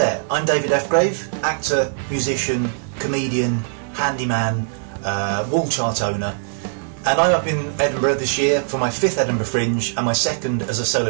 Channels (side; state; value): left; silent; 58 dB below the other